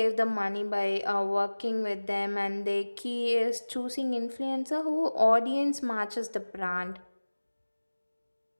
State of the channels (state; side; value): inverted; both; correlation -1.00